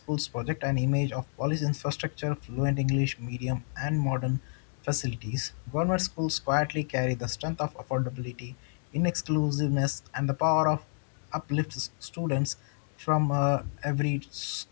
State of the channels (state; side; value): silent; right; digital silence